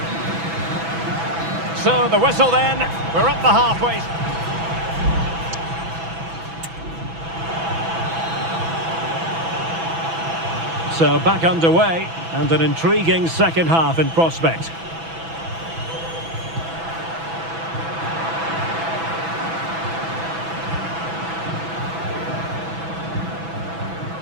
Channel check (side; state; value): left; late; 6.1 ms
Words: So the whistle then. We're up the halfway. So back underway and an intriguing second half in prospect.